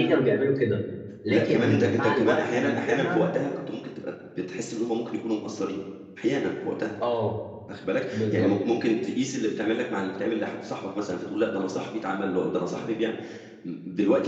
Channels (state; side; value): identical; both; correlation 1.00